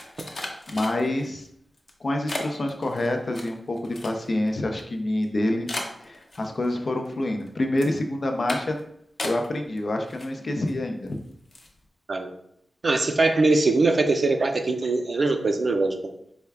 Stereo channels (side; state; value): both; normal; correlation 0.91